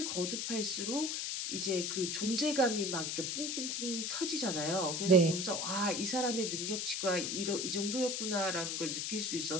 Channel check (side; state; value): left; noise; hiss, 1 dB below the sound